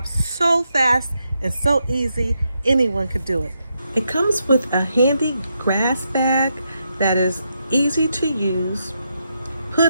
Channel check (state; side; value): inverted; both; correlation -0.82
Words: so fast and so easy, anyone could do it. It comes with a handy grass bag that is easy to use,